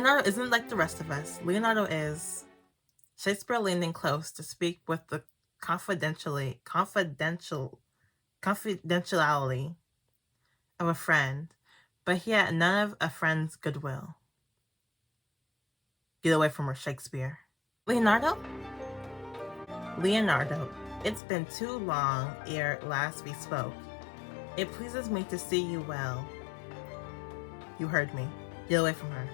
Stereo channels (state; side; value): drops out; right; at 21.2 s